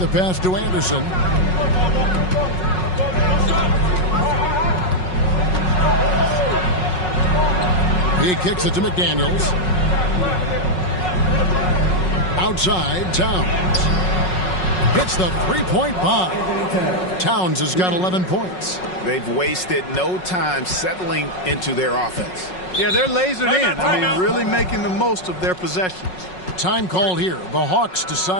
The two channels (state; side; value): late; right; 5.4 ms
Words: pass to Anderson. He kicks it to McDaniels. Outside, Towns. Hits the three-point bomb. Towns has got 11 points. They've wasted no time settling into their offense. Yeah, they're lasered in. I mean, really making the most of their possessions. Time called here. The Hawks